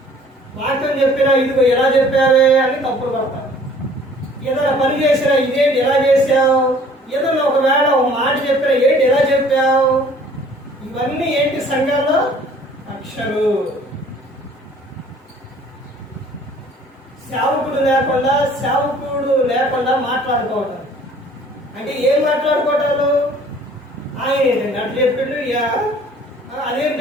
వాక్యం చెప్పినా ఇదిగో ఎలా చెప్పావే అని తప్పులు పడతారు. ఏదైనా పని చేసినా ఇదేంటి ఎలా చేసావు, ఏదైనా ఒకవేళ ఒక మాట చెప్పినా ఏంటి ఎలా చెప్పావు. ఇవన్నీ ఏంటి సంఘాల్లో? కక్షలు. సేవకుడు లేకుండా మాట్లాడుకోవటం. అంటే ఏం మాట్లాడుకోవటాలు? ఆయన ఏంటండి అట్లా చెప్పిండు,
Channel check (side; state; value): both; normal; correlation 0.53